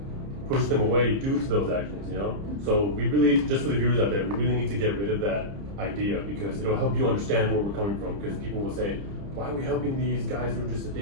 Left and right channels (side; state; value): left; late; 30 ms